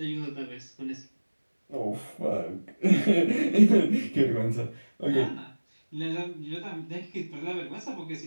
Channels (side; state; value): both; inverted; correlation -1.00